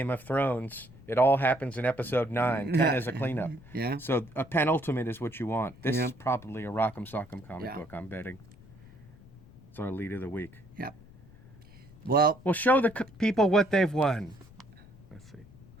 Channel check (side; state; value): left; noise; rumble, 22 dB below the sound